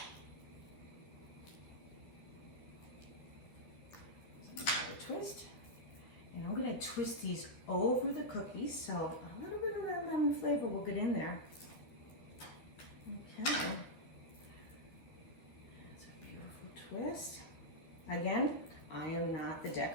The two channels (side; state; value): right; late; 13 ms